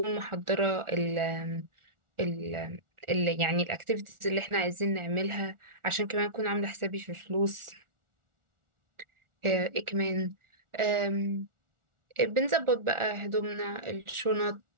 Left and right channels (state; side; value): late; left; 1.4 ms